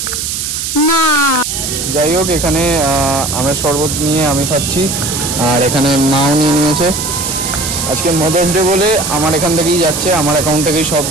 না যাই হোক এখানে আমের শরবত নিয়ে আমি খাচ্ছি, আর এখানে মাও নিয়ে নিয়েছে। আজকে মাদার্স ডে বলে আমার এখান থেকেই যাচ্ছে, আমার অ্যাকাউন্ট থেকেই সব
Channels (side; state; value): right; noise; hiss, 3 dB below the sound